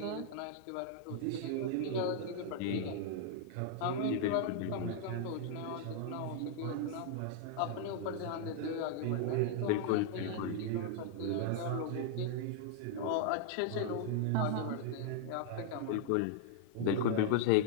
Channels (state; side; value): different; both; correlation -0.01